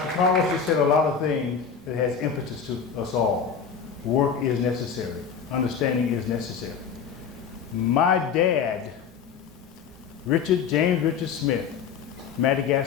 Carlos just said a lot of things that has impetus to us all. Work is necessary. Understanding is necessary. My dad, James Richard Smith,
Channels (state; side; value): quieter; right; 6.7 dB